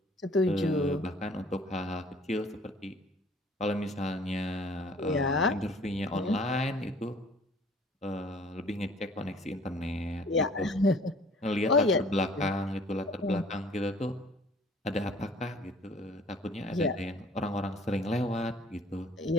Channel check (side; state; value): both; normal; correlation 0.53